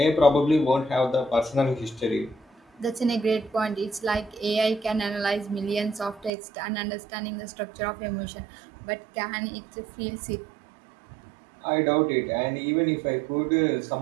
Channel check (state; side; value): drops out; left; at 6.3 s